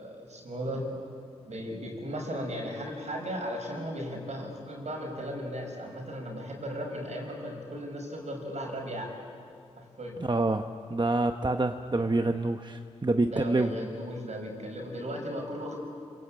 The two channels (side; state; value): both; normal; correlation 0.76